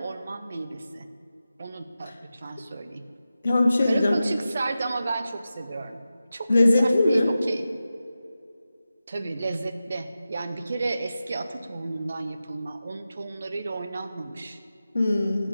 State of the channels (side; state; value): both; inverted; correlation -0.93